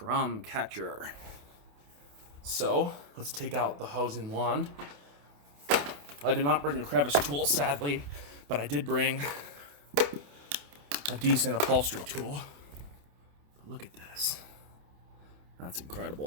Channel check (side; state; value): left; late; 28 ms